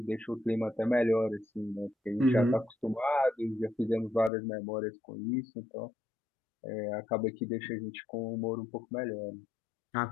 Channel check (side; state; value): right; drops out; at 4.3 s